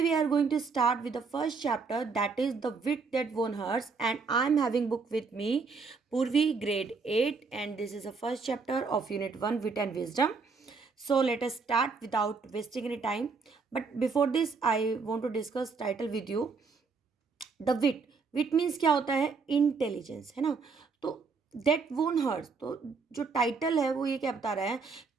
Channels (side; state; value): left; quieter; 4.8 dB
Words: we are going to start with the first chapter, that is The Wit That Won Hearts, and I'm having book with me Purvi grade 8, and this is the first chapter of unit 1, Wit and Wisdom. So let us start without wasting any time. But before this I want to discuss title with you. The wit wit means क्या होता है, intelligence, है ना। तो that वोन hers, तो जो title है वो ये क्या बता रहा है